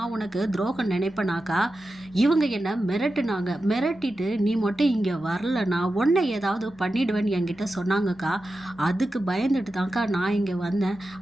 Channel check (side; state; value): both; normal; correlation 0.92